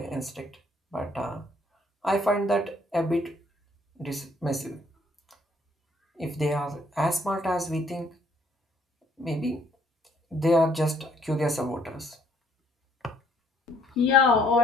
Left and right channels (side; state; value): both; normal; correlation 0.65